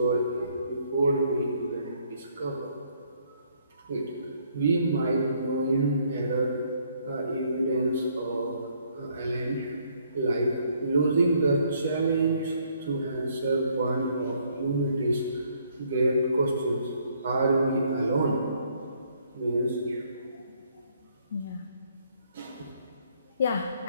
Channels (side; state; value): both; inverted; correlation -0.67